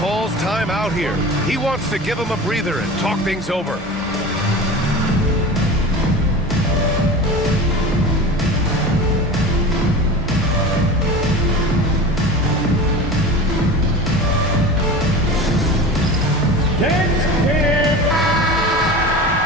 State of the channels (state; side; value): normal; both; correlation 0.33